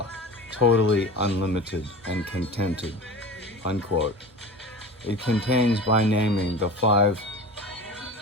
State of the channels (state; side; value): normal; both; correlation 0.34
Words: totally unlimited and contented, unquote. It contains by naming the 5